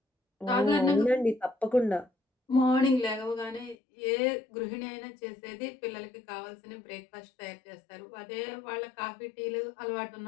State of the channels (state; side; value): drops out; right; at 3.8 s